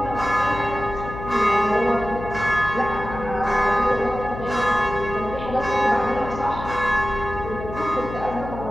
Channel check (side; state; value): left; noise; hum, 10 dB below the sound